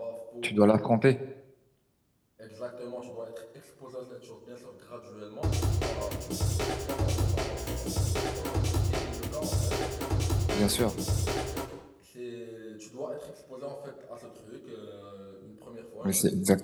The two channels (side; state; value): both; identical; correlation 1.00